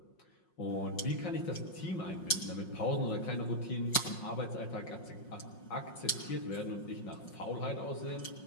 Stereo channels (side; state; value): right; late; 5.6 ms